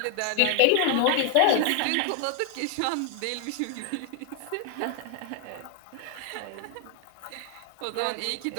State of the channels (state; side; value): different; both; correlation 0.00